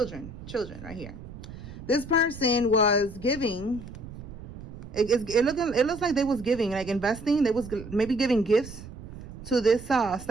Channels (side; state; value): right; noise; rumble, 14 dB below the sound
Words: right here. This person was giving. It looks like they was giving, like investing. They was maybe giving gifts to this